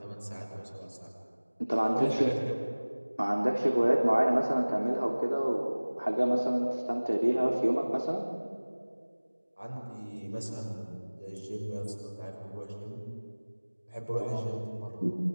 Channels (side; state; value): both; inverted; correlation -1.00